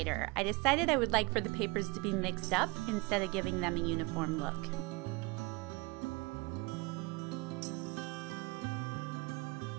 I decided I would like for the papers to be mixed up instead of giving them a uniform look.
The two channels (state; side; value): quieter; left; 25.9 dB